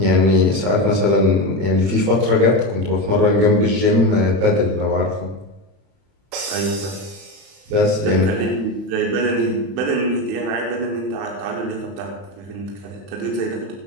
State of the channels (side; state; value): left; late; 31 ms